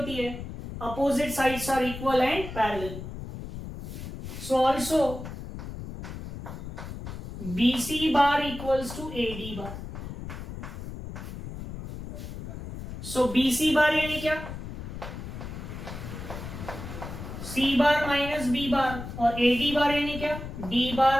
है, opposite sides are equal and parallel. So also BC bar equals to AD bar. So BC bar यानी क्या? सी बार माइनस बी बार, और एडी बार यानी क्या? D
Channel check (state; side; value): noise; left; rumble, 9 dB below the sound